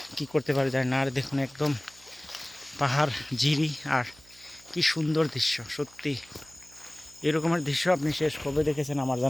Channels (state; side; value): noise; right; hum, 26 dB below the sound